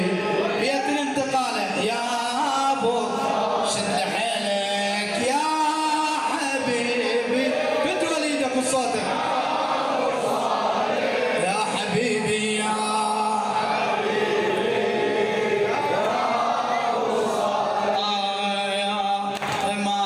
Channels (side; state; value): both; identical; correlation 1.00